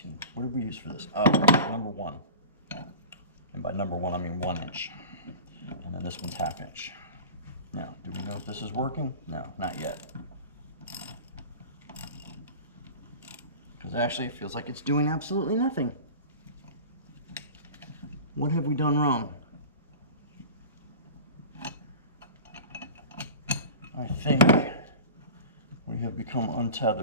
What did we use for this? Oh, number 1. And by number 1, I mean 1 inch. And then this one's 1/2 inch. Now, do we know if this is working? No, not yet. Because actually it feels like it's doing absolutely nothing. What have we done wrong? I think we have become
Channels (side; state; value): both; inverted; correlation -0.35